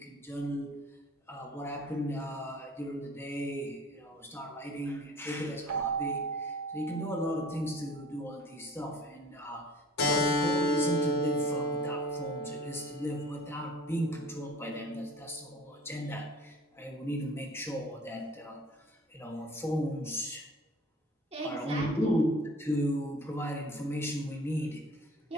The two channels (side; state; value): both; normal; correlation 0.46